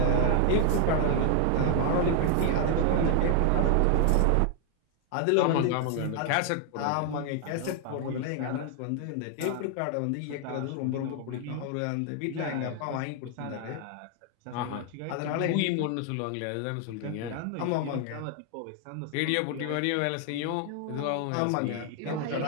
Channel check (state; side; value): different; both; correlation 0.00